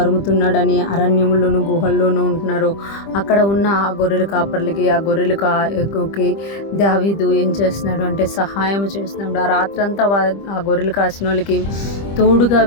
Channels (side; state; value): right; late; 25 ms